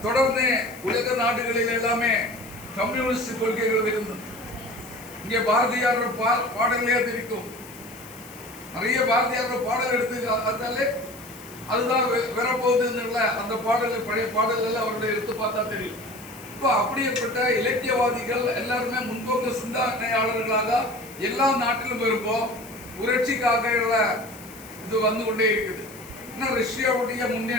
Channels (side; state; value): left; noise; hiss, 19 dB below the sound